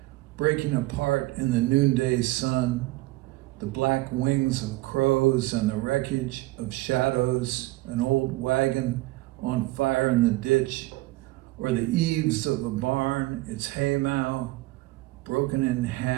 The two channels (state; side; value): quieter; left; 19.4 dB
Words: breaking apart in the noonday sun, the black wings of crows and the wreckage of shadows, an old wagon on fire in the ditch, or the eaves of a barn, its haymow broken in